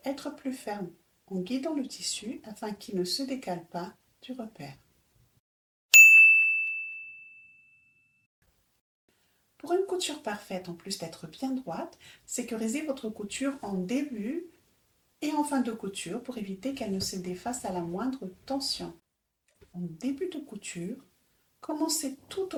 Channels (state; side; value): identical; both; correlation 1.00